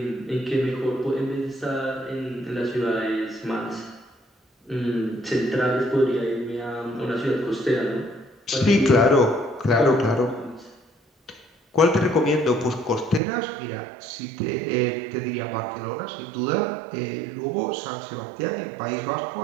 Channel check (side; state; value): left; drops out; at 13.2 s